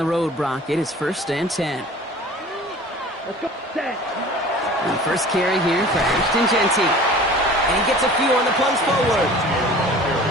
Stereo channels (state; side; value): normal; both; correlation 0.44